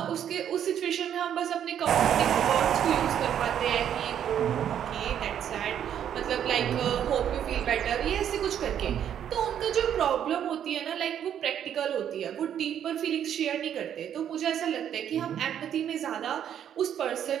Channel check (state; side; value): quieter; left; 9.6 dB